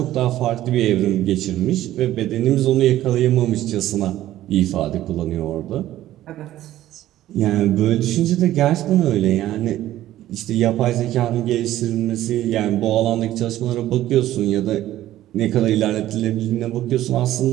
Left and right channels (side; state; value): left; quieter; 13.9 dB